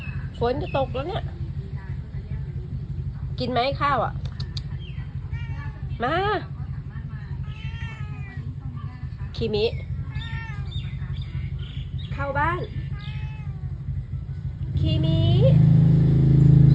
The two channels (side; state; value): both; identical; correlation 1.00